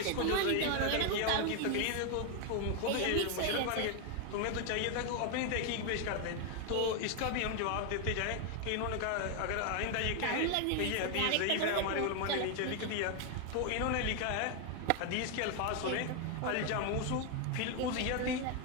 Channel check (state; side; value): different; both; correlation 0.01